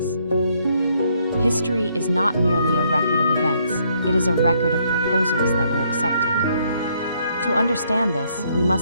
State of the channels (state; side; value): inverted; both; correlation -0.70